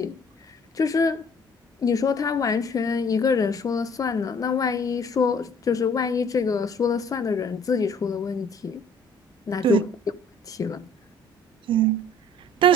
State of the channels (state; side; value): normal; both; correlation 0.55